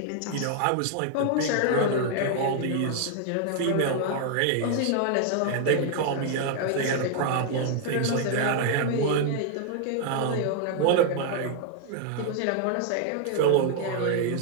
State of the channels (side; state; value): both; different; correlation 0.00